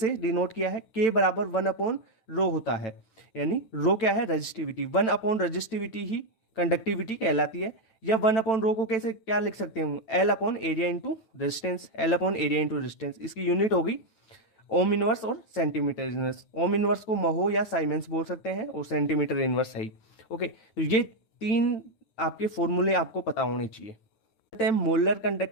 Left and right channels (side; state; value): right; late; 9.0 ms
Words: डिनोट किया है, के बराबर 1 अपॉन रो होता है, यानी रो क्या है, रजिस्टिविटी। 1 अपॉन रजिस्टिविटी ही कंडक्टिविटी कहलाती है। या 1 अपॉन रो को कैसे क्या लिख सकते हैं, L upon area into resistance, L upon area into resistance. इसकी यूनिट होगी ओम इनवर्स और सेंटीमीटर इनवर्स। ओम इनवर्स को महो या साइमेंस बोल सकते हैं और सेंटीमीटर इनवर्स है। ओके, तो ये 3 आपके फॉर्मूले आपको पता होने चाहिए। कहते हैं मोलर